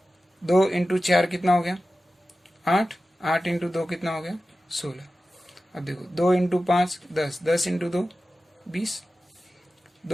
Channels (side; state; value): both; normal; correlation 0.94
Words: 2 इंटू 4 कितना हो गया 8, 8 इंटू 2 कितना हो गया 16। अब देखो 2 into 5 10, 10 into 2 20,